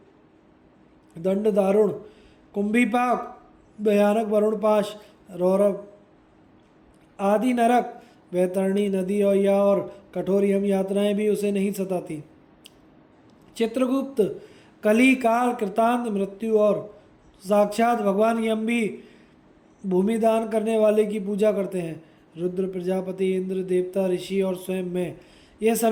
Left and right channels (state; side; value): identical; both; correlation 1.00